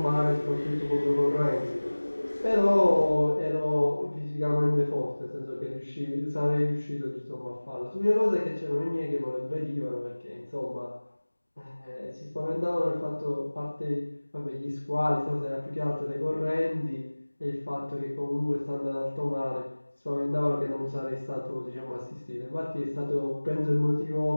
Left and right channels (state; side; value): inverted; both; correlation -1.00